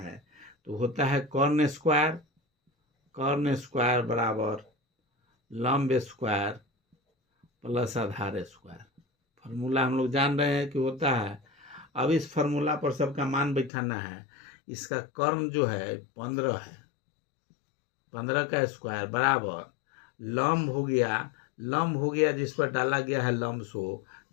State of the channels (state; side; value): drops out; right; at 13.7 s